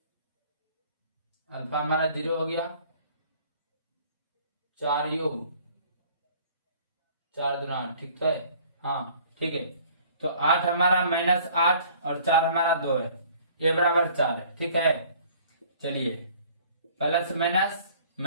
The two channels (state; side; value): inverted; both; correlation -0.53